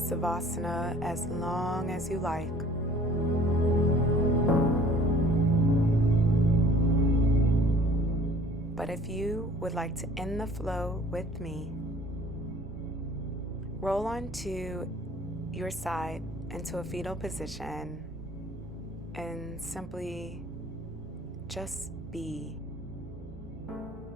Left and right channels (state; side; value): normal; both; correlation 0.51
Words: as long as you like. But if you would like to end the flow with me, roll onto your side into a fetal position and simply just be.